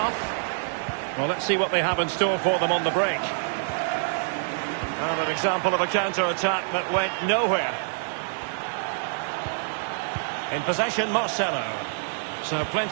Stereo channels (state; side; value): silent; left; digital silence